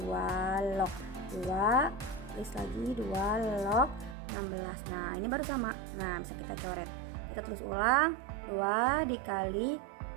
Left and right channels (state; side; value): drops out; left; at 4.2 s